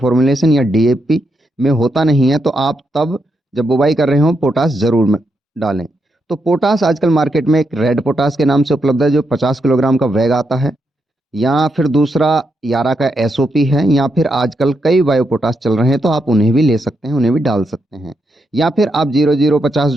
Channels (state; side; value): normal; both; correlation 0.82